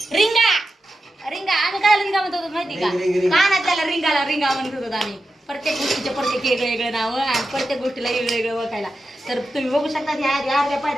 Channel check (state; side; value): normal; both; correlation 0.90